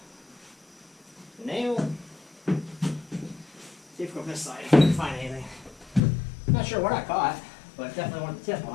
a nail? See if we go from this side, if I can find anything. Not sure what I caught, but definitely wanted the tip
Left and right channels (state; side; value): drops out; right; at 6.0 s